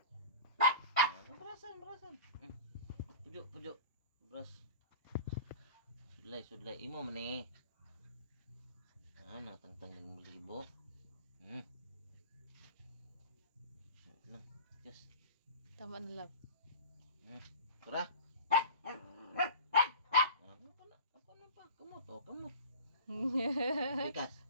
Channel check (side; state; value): both; inverted; correlation -0.39